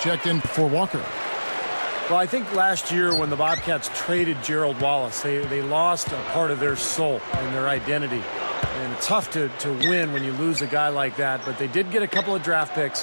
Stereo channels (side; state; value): both; inverted; correlation -1.00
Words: in for Walker. Well, I think last year when the Bobcats traded Gerald Wallace, they lost a part of their soul and their identity. And it's tough to win when you lose a guy like that, but they did get a couple of draft picks,